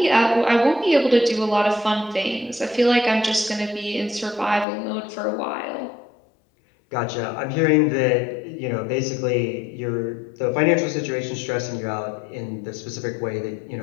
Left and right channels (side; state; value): right; drops out; at 4.7 s